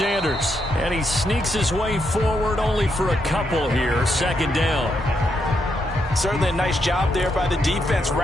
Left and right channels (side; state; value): both; normal; correlation 0.80